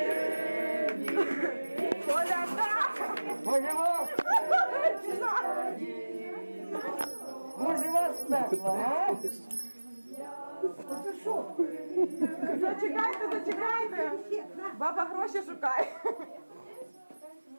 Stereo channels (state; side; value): inverted; both; correlation -1.00